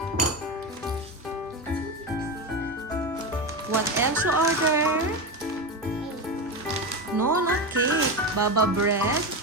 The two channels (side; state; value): both; normal; correlation 0.18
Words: What else you ordered? No, not cake. Baba bread.